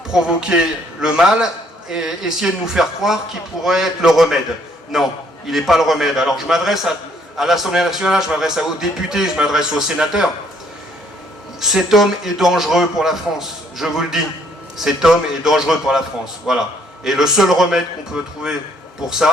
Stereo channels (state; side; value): normal; both; correlation 0.65